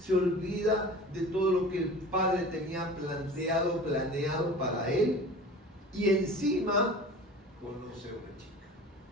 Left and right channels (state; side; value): normal; both; correlation 0.39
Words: olvida de todo lo que el padre tenía planeado para él, y encima conoce a una chica.